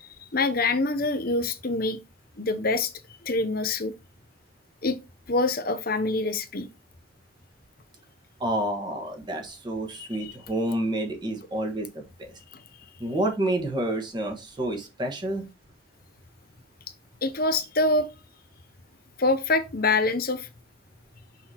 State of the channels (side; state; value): both; normal; correlation 0.19